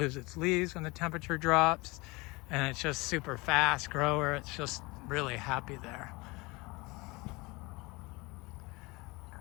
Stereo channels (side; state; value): right; quieter; 24.5 dB